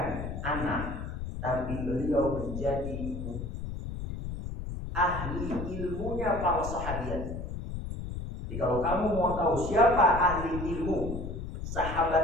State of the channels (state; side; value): noise; left; rumble, 6 dB below the sound